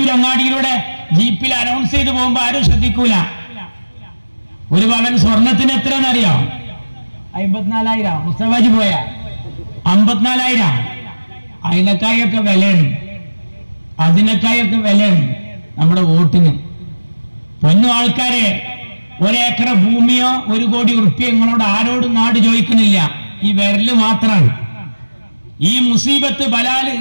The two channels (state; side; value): inverted; both; correlation -1.00